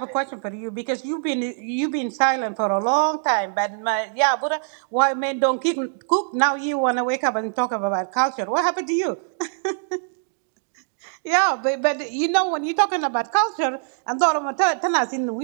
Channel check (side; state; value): left; silent; digital silence